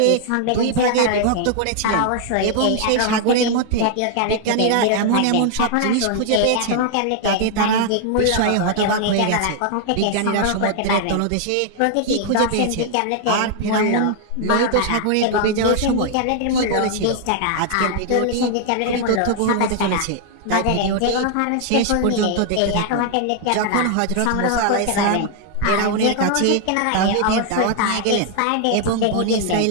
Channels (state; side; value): different; both; correlation 0.00